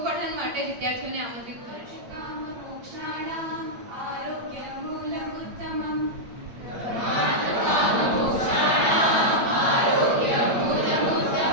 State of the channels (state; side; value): late; left; 8.5 ms